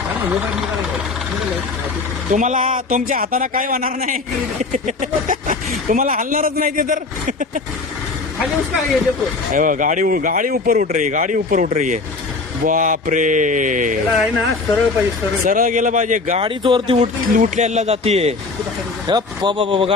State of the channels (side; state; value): right; quieter; 3.9 dB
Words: तुम्हाला तुमच्या हाताने काय होणार नाही. तुम्हाला हलणारच नाही ते तर. हे बघा, गाडी ऊपर उठ रही है, गाडी ऊपर उठ रही है. बाप रे, आहे ना सरळ पाहिजे सरळ. सरळ गेलं पाहिजे. गाडीच वरती उठल्याला जातीये. बाबा